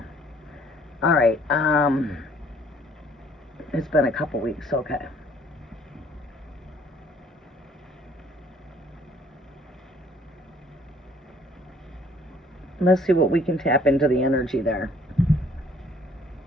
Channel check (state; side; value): normal; both; correlation 0.59